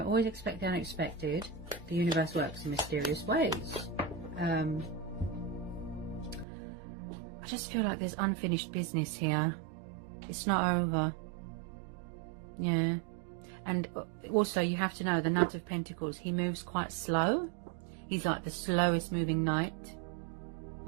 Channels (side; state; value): left; drops out; at 6.5 s